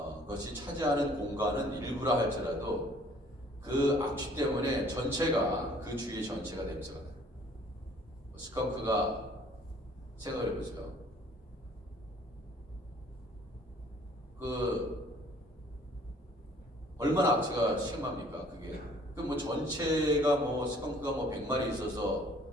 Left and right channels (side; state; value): both; normal; correlation 0.56